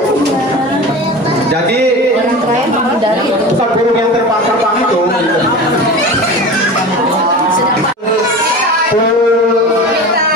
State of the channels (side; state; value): both; normal; correlation 0.32